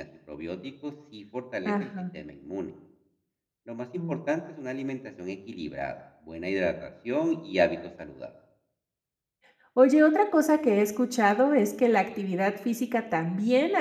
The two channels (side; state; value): both; identical; correlation 1.00